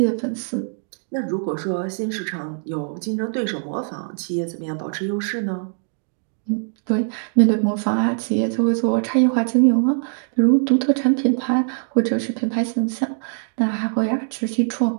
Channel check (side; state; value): left; silent; digital silence